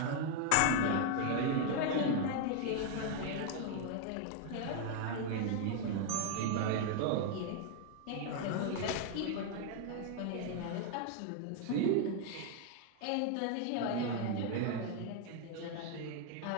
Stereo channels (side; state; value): both; different; correlation 0.00